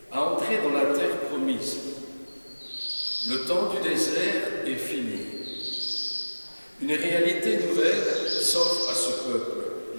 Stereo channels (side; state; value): both; inverted; correlation -1.00